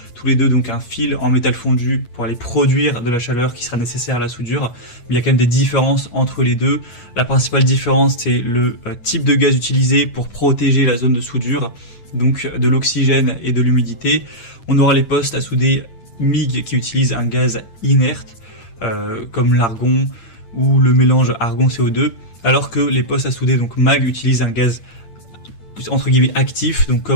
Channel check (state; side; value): late; right; 9.0 ms